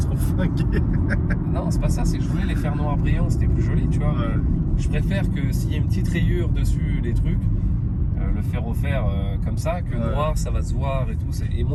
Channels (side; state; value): both; identical; correlation 1.00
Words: seront flinguées. Non, c'est pas ça, c'est que je voulais les faire noirs brillants, c'était plus joli, tu vois. Ouais. Mais je préfère que s'il y a une petite rayure dessus, les trucs, le faire refaire comme ça, que Ouais. noir, ça va se voir et tout. Et